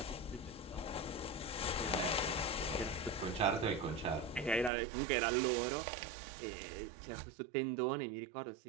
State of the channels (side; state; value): left; drops out; at 4.7 s